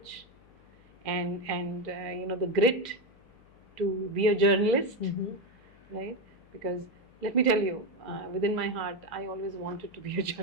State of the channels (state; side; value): noise; left; hum, 27 dB below the sound